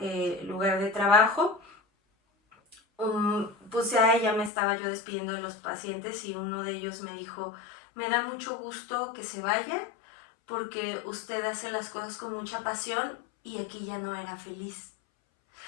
lugar de trabajo, pues ya me estaba yo despidiendo de los pacientes y uno de ellos me dijo, me da mucho gusto que se vaya porque usted hace las cosas con mucha pasión y aquí ya no era feliz.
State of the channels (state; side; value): drops out; right; at 4.5 s